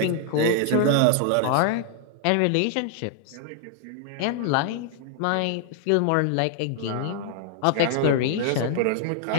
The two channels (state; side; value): different; both; correlation 0.00